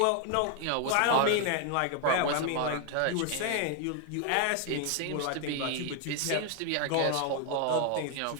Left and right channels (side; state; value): both; different; correlation 0.00